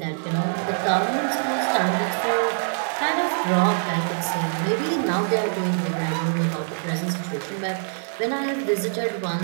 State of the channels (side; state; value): left; silent; 63 dB below the other